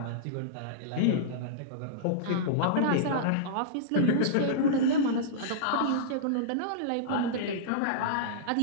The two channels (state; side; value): different; both; correlation -0.03